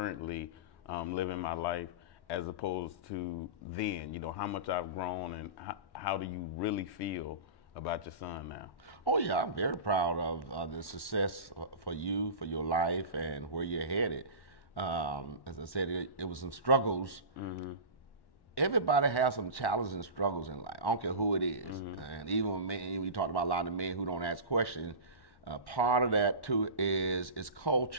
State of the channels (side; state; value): right; late; 1.1 ms